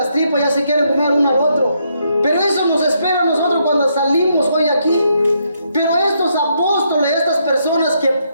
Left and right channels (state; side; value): inverted; both; correlation -0.76